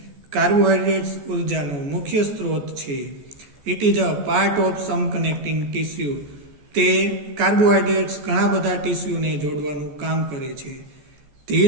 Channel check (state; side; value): late; left; 14 ms